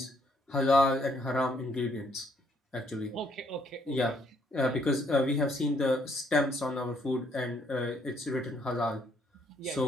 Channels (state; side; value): normal; both; correlation 0.69